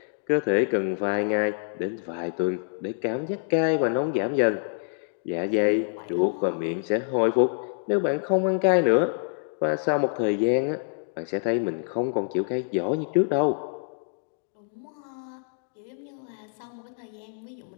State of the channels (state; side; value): silent; right; digital silence